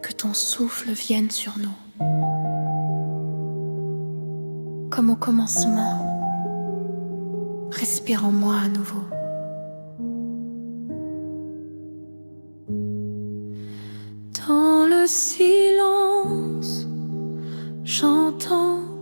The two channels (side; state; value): both; inverted; correlation -1.00